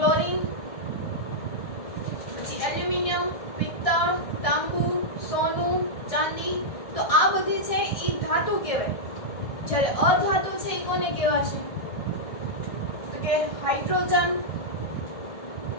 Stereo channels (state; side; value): late; right; 1.7 ms